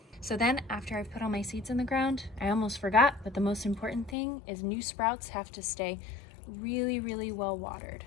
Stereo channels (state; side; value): drops out; right; at 4.2 s